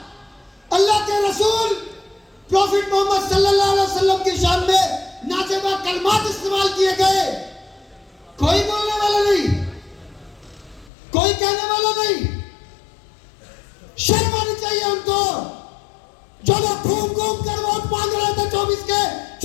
अल्लाह के रसूल प्रॉफिट मोहम्मद सल्लल्लाहु अलैहि वसल्लम की शान में नाजेबा कलमात इस्तेमाल किए गए, कोई बोलने वाला नहीं, कोई कहने वाला नहीं। शर्म आनी चाहिए उनको, जो लोग घूम घूम कर वोट मांग रहे थे 24 के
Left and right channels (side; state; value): right; drops out; at 10.9 s